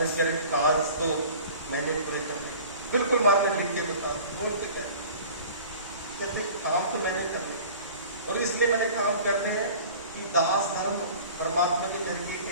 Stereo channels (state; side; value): inverted; both; correlation -0.43